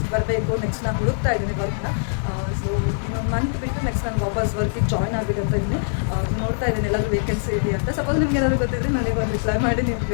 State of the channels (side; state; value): right; silent; 64 dB below the other